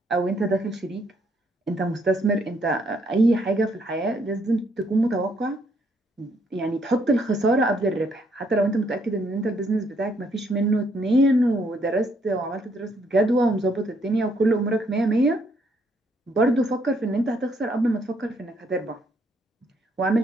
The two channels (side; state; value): both; normal; correlation 0.70